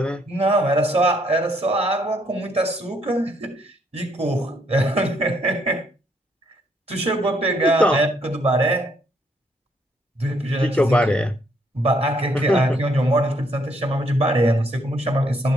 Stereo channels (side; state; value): both; normal; correlation 0.70